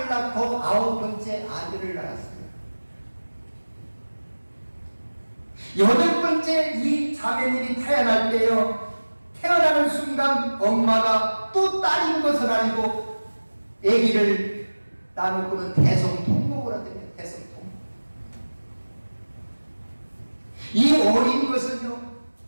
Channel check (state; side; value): inverted; both; correlation -1.00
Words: 낳고 9번째 아들을 낳았어요. 8번째 이 자매님이 태어날 때요 태어나는 순간 엄마가 또 딸인 것을 알고 아기를 나누고는 대성통곡을 하더래요. 대성통곡. 이 어린 것은요